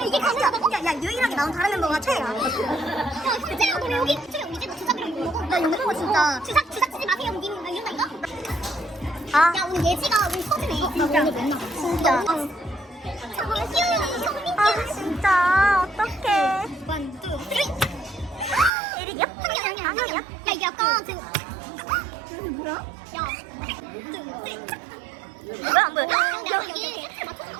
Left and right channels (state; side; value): drops out; left; at 18.7 s